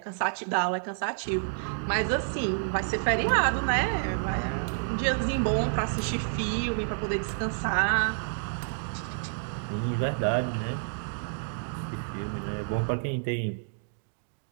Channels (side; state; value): left; silent; digital silence